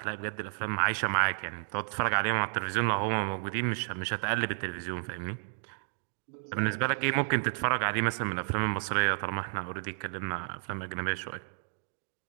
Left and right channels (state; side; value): silent; left; digital silence